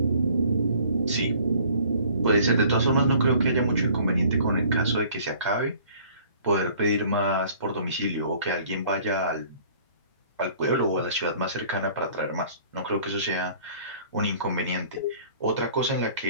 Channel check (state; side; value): inverted; both; correlation -0.54